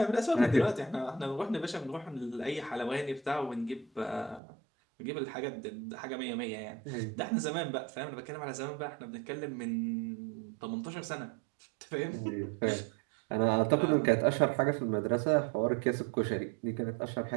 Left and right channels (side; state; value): left; drops out; at 4.4 s